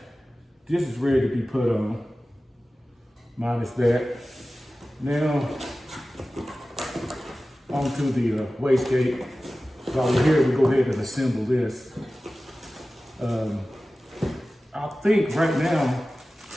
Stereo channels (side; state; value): both; normal; correlation 0.96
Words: this is ready to be put on, minus that. Now, onto the wastegate. So while we're here, we go ahead and assemble this. I think right now,